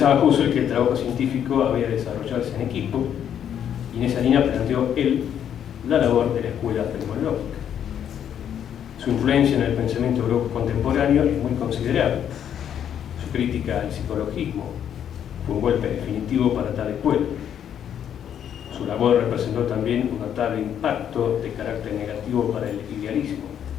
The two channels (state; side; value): quieter; right; 9.3 dB